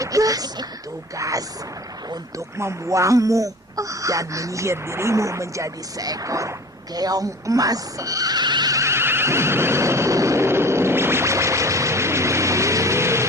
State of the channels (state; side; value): normal; both; correlation 0.40